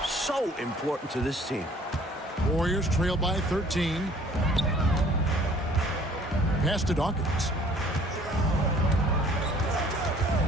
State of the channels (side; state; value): both; normal; correlation 0.55